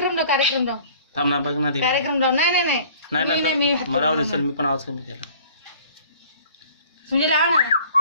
लाव कार्यक्रम लाव थांब ना बघ ना ते कार्यक्रम लाव. नाही नाही नाही मी नाही मी मला राहू दे चल मी पण आवाज कमी केला. म्हणजे लाव ना.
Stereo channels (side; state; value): both; inverted; correlation -0.51